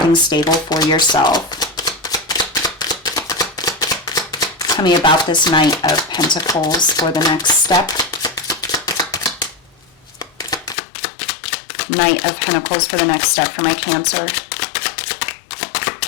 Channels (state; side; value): drops out; right; at 10.8 s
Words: stable for yourself. Tell me about this Knight of Pentacles for the next step. Knight of Pentacles for the next step for my Cancer.